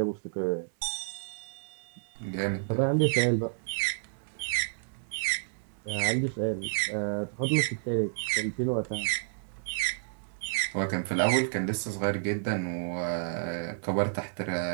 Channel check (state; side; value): silent; left; digital silence